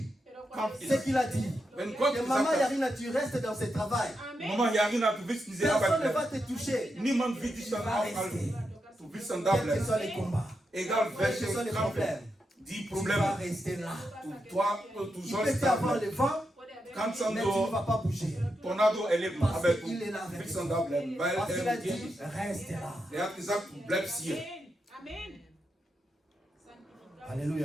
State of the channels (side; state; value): both; normal; correlation 0.85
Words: Kampf ce ist. qu'il a dit, Wenn Gott que gesagt maman hat, Yarina, tu restes dans ce travail. Mama Yarina, du willst diese Personne Arbeit ne va bleiben. te toucher. Niemand wird dich dann aufhalten. Du willst dann da Quels que bleiben. soient les combats, Egal quels que welche soient les Kampf, problèmes, die tu vas Probleme, rester là. du Il sollst peut y da avoir bleiben. le vent, Kannst dann mais tu ne so vas pas bouger. Tornado erleben, Parce aber du qu'il est là avec willst toi. dann da bleiben, weil Parce qu'il a er mit dir dit, ist. reste là. Er hat gesagt, du bleibst hier.